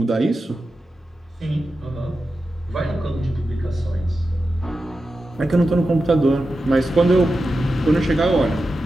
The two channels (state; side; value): normal; both; correlation 0.91